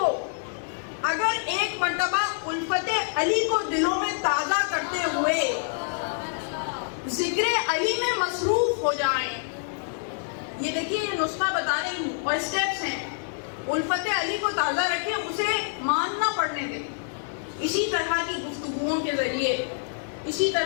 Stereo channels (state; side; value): silent; right; digital silence